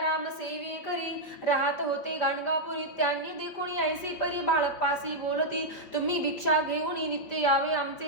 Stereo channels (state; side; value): late; right; 5.5 ms